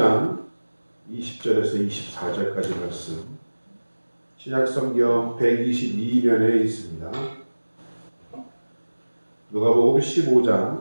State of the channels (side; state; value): both; inverted; correlation -1.00